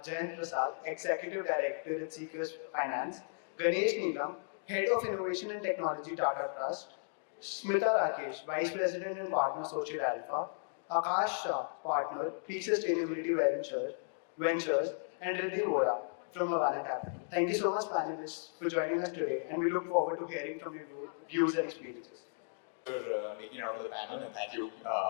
Jayant Prasad, Executive Director at CKers Finance, Ganesh Neelam, Head of Innovation and Technology Tata Trust, Smita Rakesh, Vice President and Partner Social Alpha, Aakash Shah, Partner, Peak Sustainability Ventures, and Riddhi Vora from Avaana Capital. Thank you so much, panelists, for joining us today, and we look forward to hearing from your views and experiences. For making it out for the panel, and thank you,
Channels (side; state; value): right; silent; digital silence